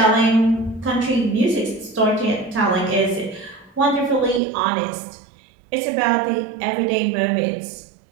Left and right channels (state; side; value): drops out; left; at 4.4 s